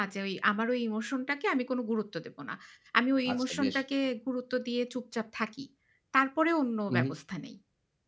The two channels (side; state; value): both; identical; correlation 1.00